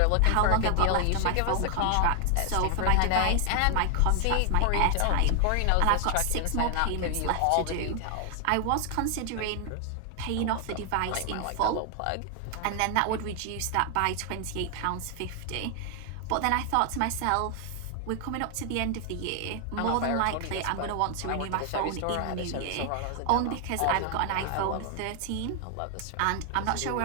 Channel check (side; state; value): both; different; correlation 0.00